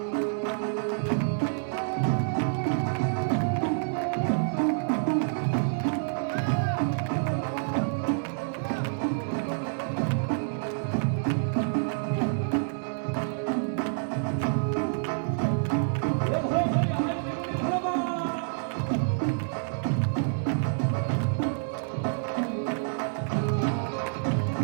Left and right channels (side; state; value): left; silent; digital silence